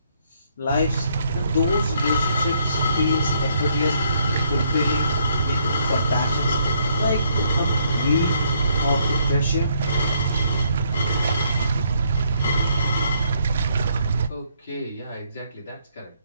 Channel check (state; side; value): inverted; both; correlation -0.70